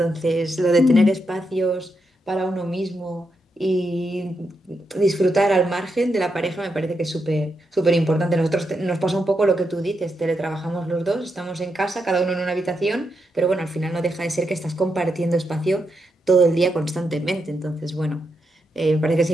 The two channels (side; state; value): both; normal; correlation 0.83